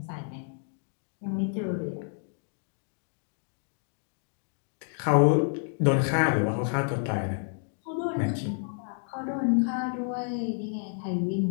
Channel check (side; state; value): right; silent; 58 dB below the other